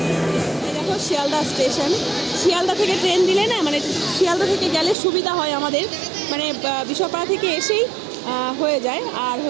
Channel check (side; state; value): left; drops out; at 5.0 s